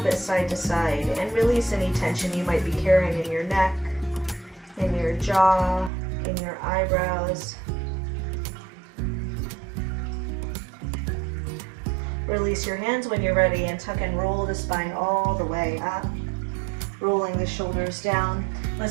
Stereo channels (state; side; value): drops out; left; at 5.9 s